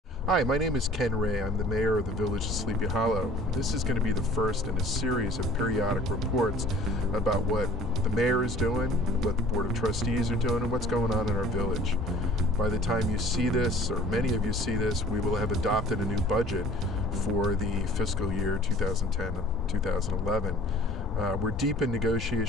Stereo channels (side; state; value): both; normal; correlation 0.49